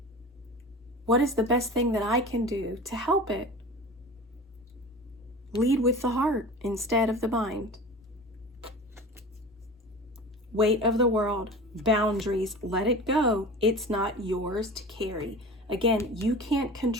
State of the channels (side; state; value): both; normal; correlation 0.35